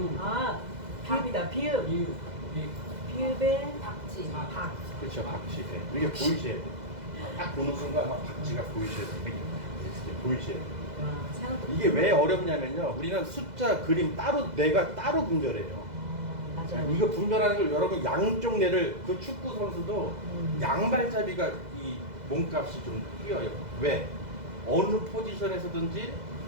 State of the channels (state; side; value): late; left; 2.0 ms